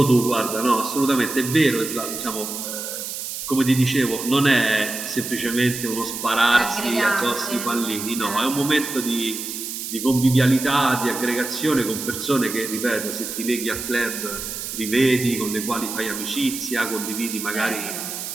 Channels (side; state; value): right; noise; hiss, 6 dB below the sound